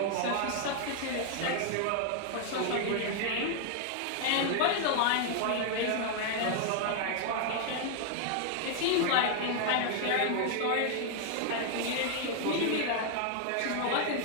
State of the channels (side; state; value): both; different; correlation 0.00